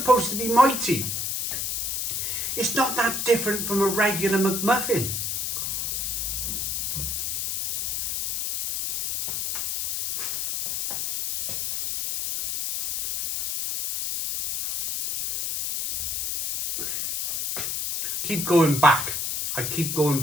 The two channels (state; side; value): noise; left; hiss, 1 dB below the sound